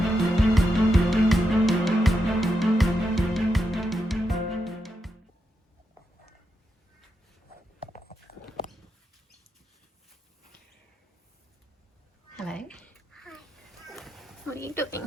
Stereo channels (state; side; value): normal; both; correlation 0.84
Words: Hello. Hi. What are you doing?